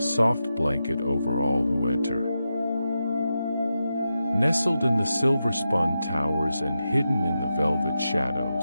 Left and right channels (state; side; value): inverted; both; correlation -0.89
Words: soft blanket over all who enter. Nestled in the silver-spun towers and hidden in the velvet